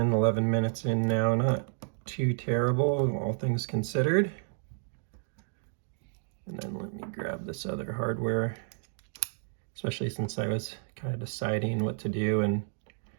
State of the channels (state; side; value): silent; left; digital silence